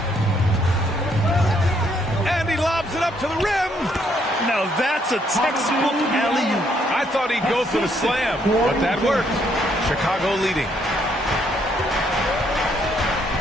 And he lobs it up to the rim. Now that's a textbook alley-oop. I thought he'd go for the slam, but that worked. Chicago leading.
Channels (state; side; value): normal; both; correlation 0.71